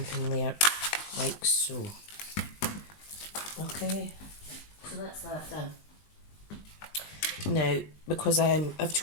layer like so. Okay, so that's that done. Now, because I've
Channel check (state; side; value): late; right; 20 ms